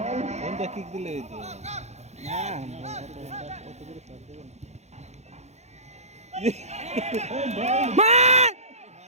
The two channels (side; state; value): left; late; 0.32 ms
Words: কোনটা কিক দিলে এই তো না মার